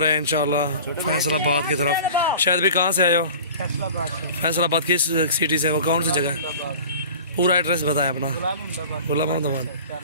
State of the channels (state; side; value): inverted; both; correlation -0.40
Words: रहे हैं इंशाल्लाह फैसलाबाद की तरफ। शायद भी कहाँ से आए हो? फैसलाबाद किस सिटी से? वो कौन सी जगह है? पूरा एड्रेस बताएं अपना। गुलाम अहमदाबाद।